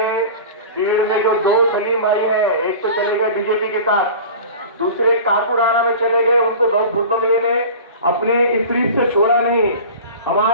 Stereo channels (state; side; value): inverted; both; correlation -0.37